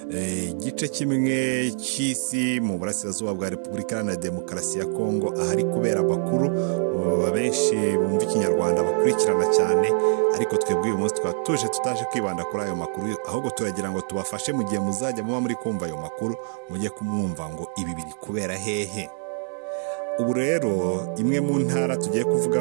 igice kimwe cy'isi mu burasirazuba bwa Repubulika Iharanira Demokarasi ya Kongo ahari kubera amakuru benshi bumva ikinyarwanda bakurikirana cyane, ariko twebwe uyu munsi tukaba tutaje kwibanda kuri ayo makuru, ahubwo turagira ngo tubafashe mu gihe muzajya muba muri kumva ayo makuru mujye kumwumva ngo ibi biri kubera hehe. Ubu rero imwe mu ntara tugiye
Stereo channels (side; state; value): left; silent; 62 dB below the other